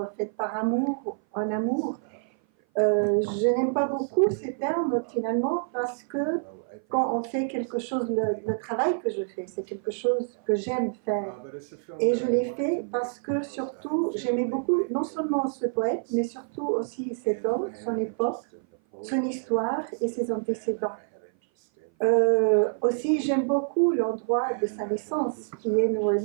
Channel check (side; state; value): left; silent; 57 dB below the other